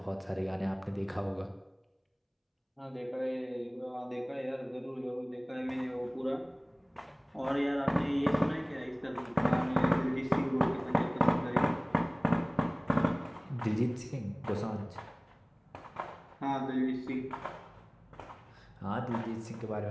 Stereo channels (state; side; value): identical; both; correlation 1.00